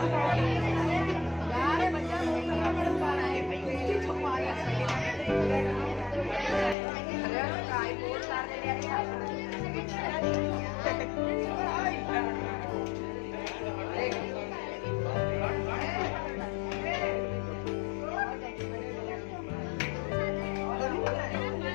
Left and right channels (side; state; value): right; drops out; at 6.8 s